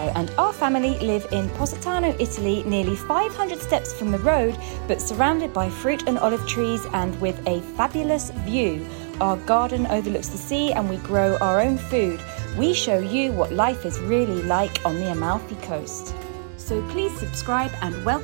and our family live in Positano, Italy, nearly 500 steps from the road, but surrounded by fruit and olive trees and with a fabulous view. Our garden overlooks the sea and we grow our own food. We show you what life is really like on the Amalfi Coast. So please subscribe and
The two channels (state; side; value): silent; left; digital silence